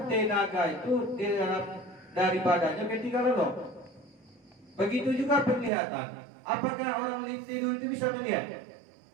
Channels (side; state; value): left; drops out; at 5.7 s